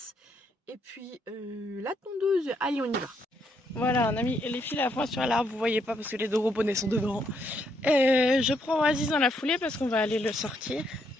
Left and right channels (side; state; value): both; normal; correlation 0.74